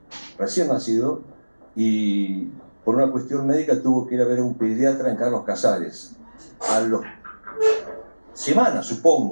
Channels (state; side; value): inverted; both; correlation -1.00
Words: y por una cuestión médica tuvo que ir a ver a un pediatra en Carlos Casares, a las semanas,